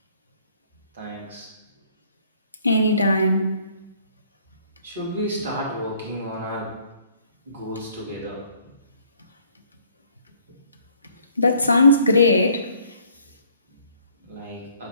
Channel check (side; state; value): both; inverted; correlation -0.61